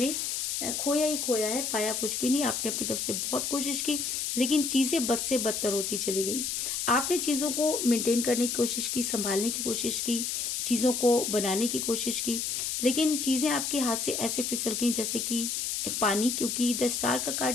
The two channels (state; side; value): noise; left; hiss, 1 dB below the sound